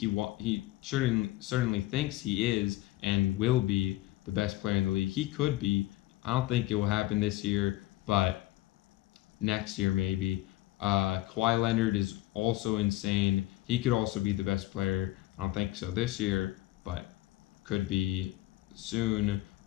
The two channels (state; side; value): quieter; right; 17.2 dB